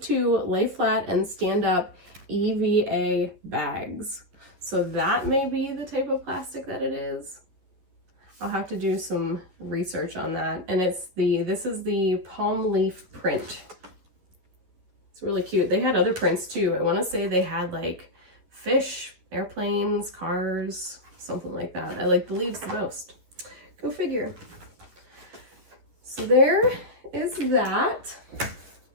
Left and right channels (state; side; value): late; left; 11 ms